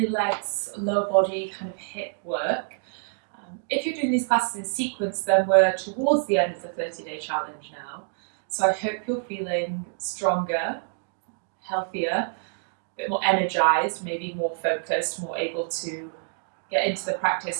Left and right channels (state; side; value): silent; left; digital silence